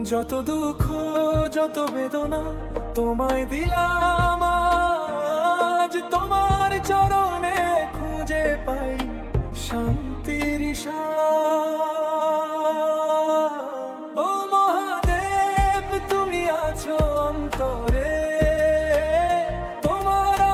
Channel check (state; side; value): identical; both; correlation 1.00